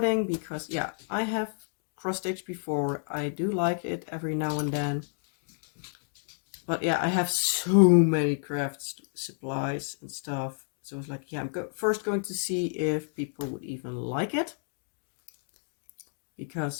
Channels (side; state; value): right; silent; 58 dB below the other